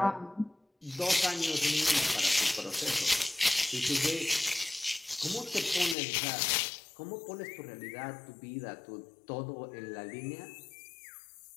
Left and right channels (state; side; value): drops out; right; at 6.0 s